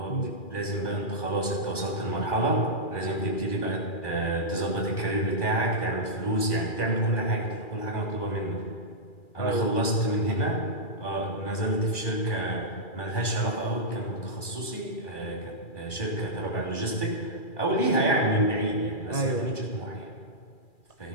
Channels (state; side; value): late; right; 2.4 ms